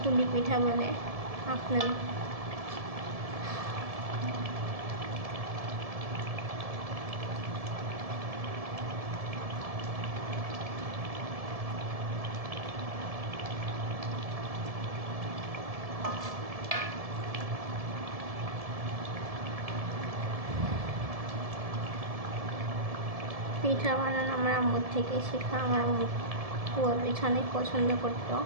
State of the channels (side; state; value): left; late; 1.7 ms